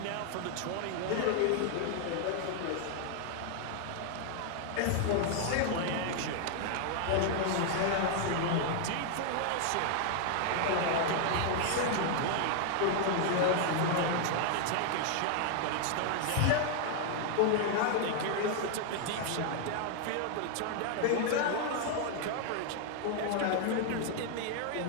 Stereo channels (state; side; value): different; both; correlation 0.00